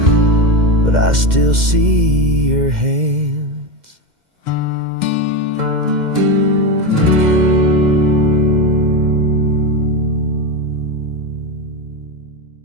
but I still see your hands.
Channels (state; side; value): late; left; 2.1 ms